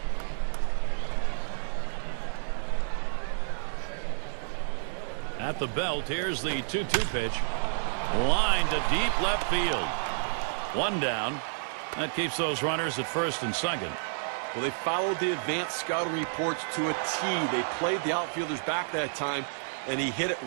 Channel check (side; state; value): left; silent; digital silence